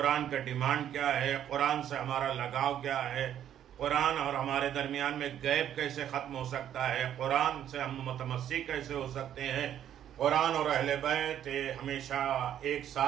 کا ڈیمانڈ کیا ہے، قرآن سے ہمارا لگاؤ کیا ہے، قرآن اور ہمارے درمیان میں گیپ کیسے ختم ہو سکتا ہے، قرآن سے ہم متمسک کیسے ہو سکتے ہیں، قرآن اور اہل بیت ہمیشہ ایک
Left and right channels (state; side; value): quieter; left; 10.5 dB